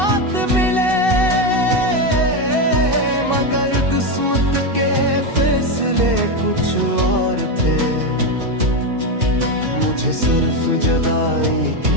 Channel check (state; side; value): late; left; 2.6 ms